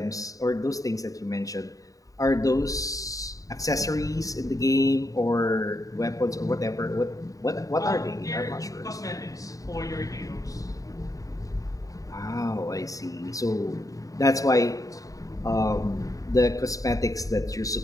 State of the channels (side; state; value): right; late; 0.16 ms